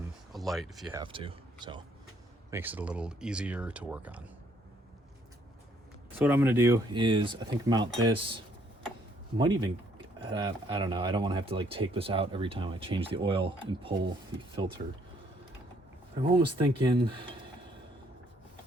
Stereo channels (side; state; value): both; normal; correlation 0.67